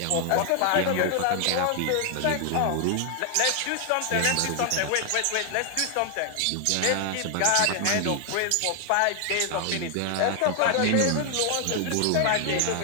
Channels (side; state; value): both; different; correlation 0.00